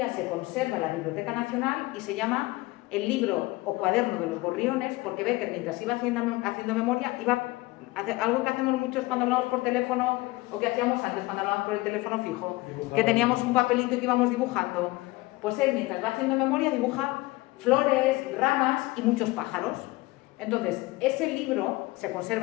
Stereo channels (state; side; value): quieter; right; 21.1 dB